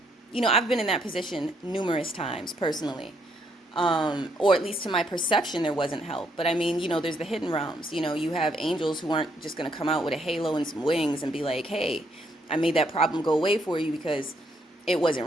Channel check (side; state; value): both; normal; correlation 0.73